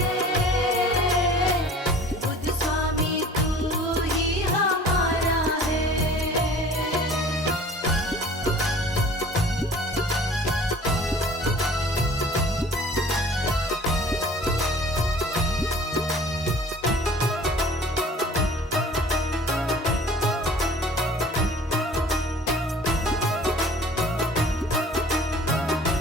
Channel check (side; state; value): both; normal; correlation 0.48